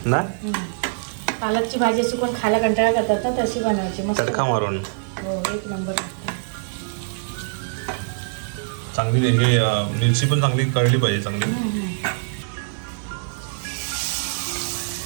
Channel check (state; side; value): silent; left; digital silence